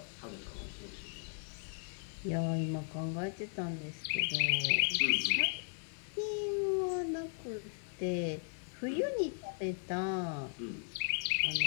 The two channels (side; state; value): right; silent; 53 dB below the other